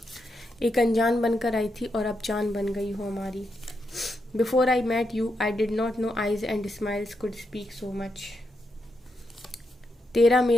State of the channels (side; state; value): both; normal; correlation 0.83